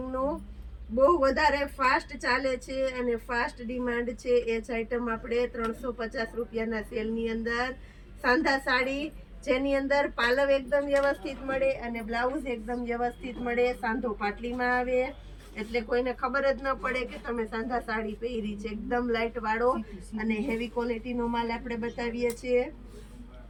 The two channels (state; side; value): identical; both; correlation 1.00